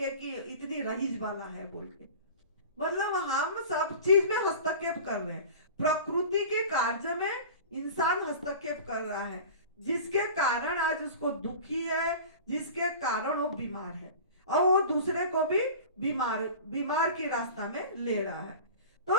कि इतनी रईस वाला है बोल के। मतलब हम सब चीज में हस्तक्षेप कर रहे हैं। प्रकृति के कार्य में इंसान हस्तक्षेप कर रहा है, जिसके कारण आज उसको दुखी है, जिसके कारण वो बीमार है, और वो दूसरे को भी बीमार की रास्ता में ले रहा है।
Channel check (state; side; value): inverted; both; correlation -0.37